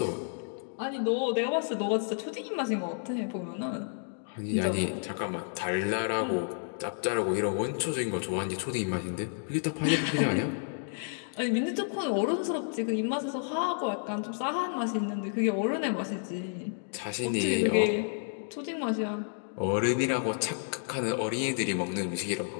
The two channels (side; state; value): right; silent; digital silence